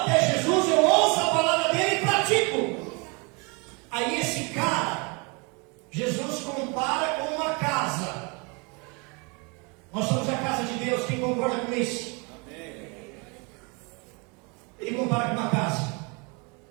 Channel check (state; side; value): quieter; left; 31.1 dB